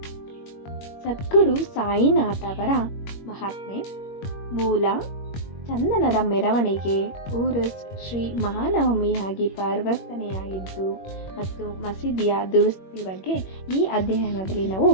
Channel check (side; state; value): right; late; 21 ms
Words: ಸದ್ಗುರು ಸಾಯಿನಾಥ್ ಅವರ ಮಹಾತ್ಮೆ. ಮೂಲ ಚಂದನದ ಮೆರವಣಿಗೆ ಊರುಸ್ ಶ್ರೀ ಮಹಾನವಮಿಯಾಗಿ ಪರಿವರ್ತನೆಯಾಗಿದ್ದು ಮತ್ತು ಮಸೀದಿಯ ದುರಸ್ತಿ ಬಗ್ಗೆ ಈ ಅಧ್ಯಯನದಲ್ಲಿ ನಾವು